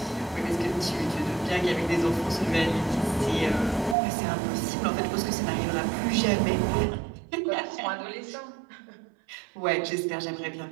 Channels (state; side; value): drops out; left; at 4.0 s